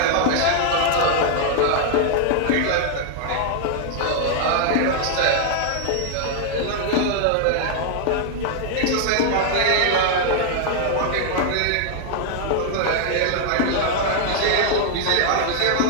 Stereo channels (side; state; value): both; different; correlation 0.00